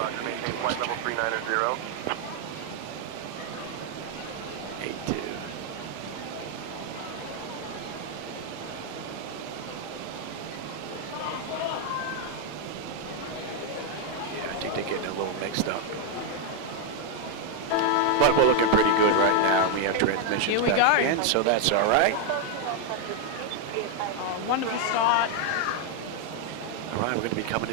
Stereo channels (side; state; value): both; different; correlation 0.00